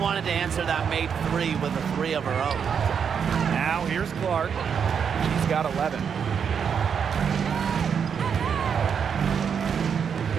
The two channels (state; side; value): quieter; left; 7.1 dB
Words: to answer that made three with a three of her own. Now here's Clark. She's got 11.